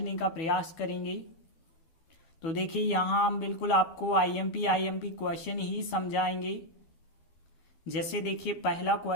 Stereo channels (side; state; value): right; late; 12 ms